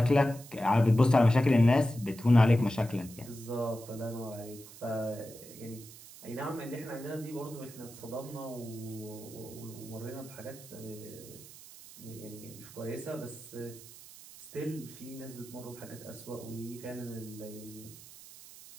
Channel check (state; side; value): noise; right; hiss, 17 dB below the sound